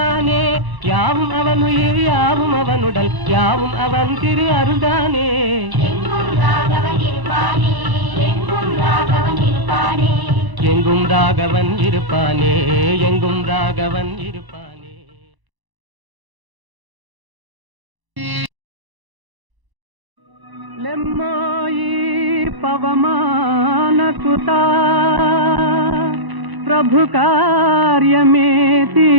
யாவும் அவன் உயிர் யாவும் அவனுடல், யாவும் அவன் திரு அருள்தானே. எங்கும் ராகவன் இருப்பானே, எங்கும் ராகவன் இருப்பானே, எங்கும் ராகவன் இருப்பானே, எங்கும் ராகவன் இருப்பானே. லெம்மாயி పవమాన సుతా ప్రభు కార్యమే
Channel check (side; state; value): left; late; 1.0 ms